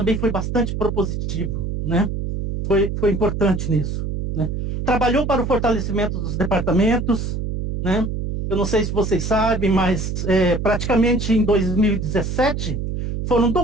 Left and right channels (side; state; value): right; noise; hum, 3 dB below the sound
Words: foi bastante propositivo, né? Foi importante nisso, né? Trabalhou para o fortalecimento dos departamentos, né? Eu não sei se vocês sabem, mas praticamente em 2017 foram